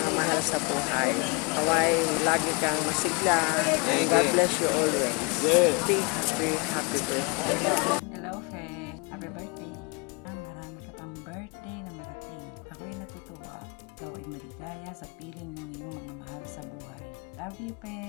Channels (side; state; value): right; quieter; 32.0 dB